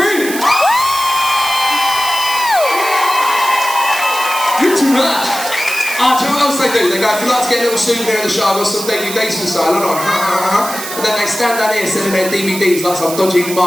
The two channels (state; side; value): noise; right; hiss, 8 dB below the sound